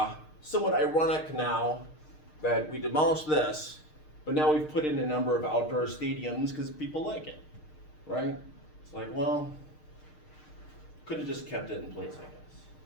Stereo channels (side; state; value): right; late; 6.5 ms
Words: Somewhat ironic now that we demolished this, but now we've put in a number of outdoor stadiums because people like it, right? It's like, well, could have just kept it in place,